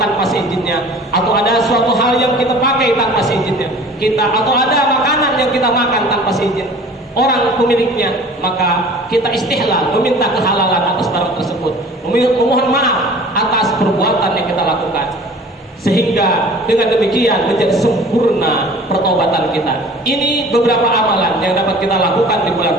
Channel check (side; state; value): both; normal; correlation 0.45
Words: tanpa seizinnya, atau ada suatu hal yang kita pakai tanpa seizinnya atau ada makanan yang kita makan tanpa seizin orang pemiliknya, maka kita istihlal, meminta kehalalan atas barang tersebut, memohon maaf atas perbuatan yang kita lakukan, sehingga dengan demikian menjadi sempurna pertobatan kita. Ini beberapa amalan yang dapat kita lakukan di bulan